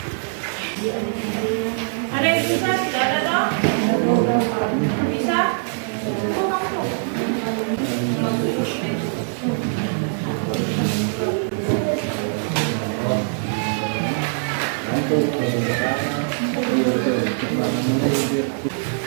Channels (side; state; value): left; silent; digital silence